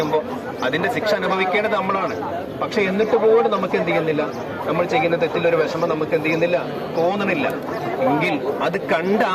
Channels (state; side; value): identical; both; correlation 1.00